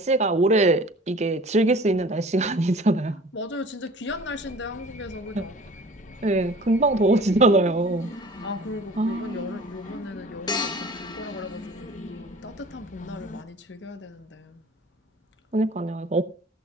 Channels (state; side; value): normal; both; correlation 0.46